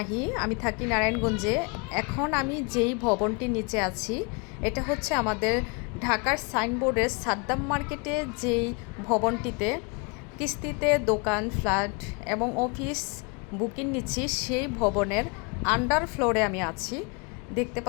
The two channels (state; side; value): quieter; right; 31.9 dB